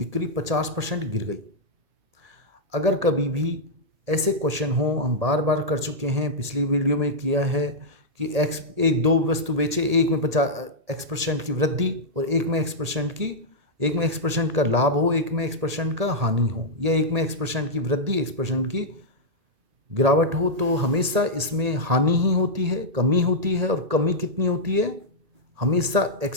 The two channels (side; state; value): left; late; 1.8 ms